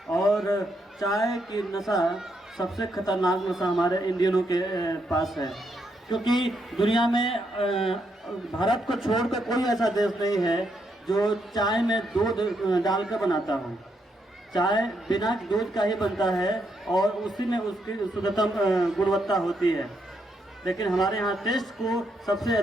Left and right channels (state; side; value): normal; both; correlation 0.78